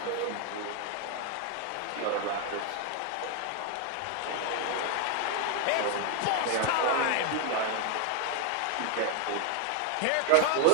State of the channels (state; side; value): different; both; correlation 0.01